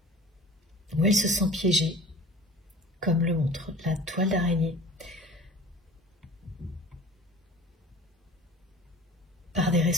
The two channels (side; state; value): both; normal; correlation 0.42